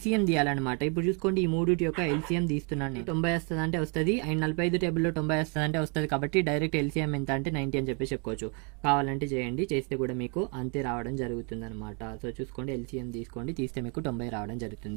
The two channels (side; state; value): left; quieter; 35.3 dB